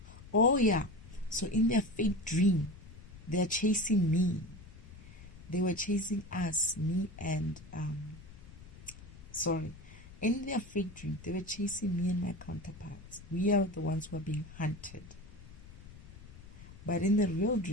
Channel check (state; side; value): noise; left; rumble, 17 dB below the sound